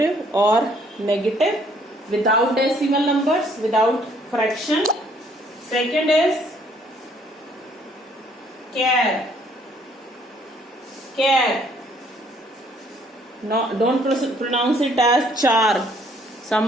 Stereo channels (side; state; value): both; normal; correlation 0.63